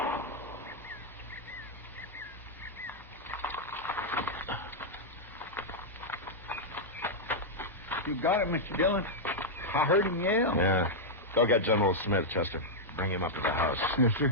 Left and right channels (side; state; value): both; normal; correlation -0.05